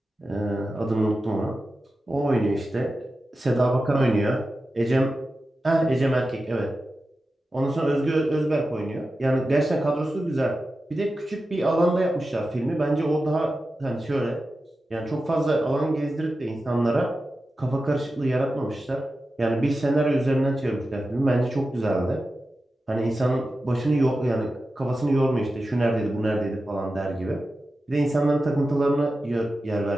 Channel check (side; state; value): both; normal; correlation 0.92